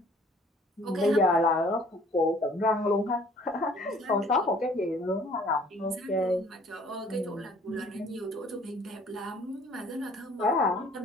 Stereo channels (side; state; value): both; normal; correlation 0.55